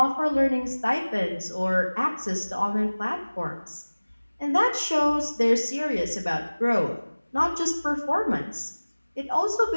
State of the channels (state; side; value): inverted; both; correlation -1.00